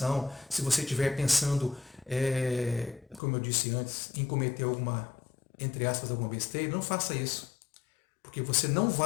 se você estiver pensando, como eu disse antes, em cometer alguma, entre aspas, alguma besteira, não faça isso. Porque você não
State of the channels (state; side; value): drops out; right; at 3.2 s